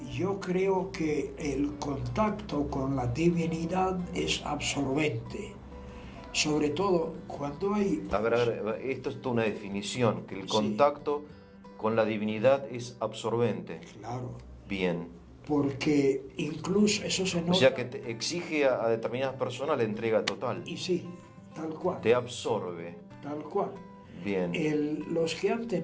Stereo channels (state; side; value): identical; both; correlation 1.00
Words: Yo creo que el contacto con la divinidad es absorbente, sobre todo cuando hay... A ver, esto es toda una definición, que el contacto con la divinidad es absorbente. Claro. Bien. Porque incluso eso se nota... O sea que te exige a determinadas personas la entrega total. Y sí, tal cual. Te absorbe. Tal cual. Bien. Los que han